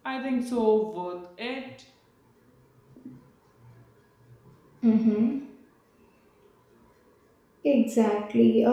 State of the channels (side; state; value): both; identical; correlation 1.00